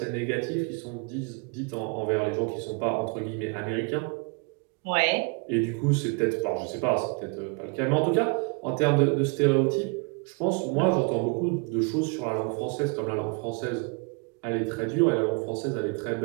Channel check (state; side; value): quieter; left; 33.7 dB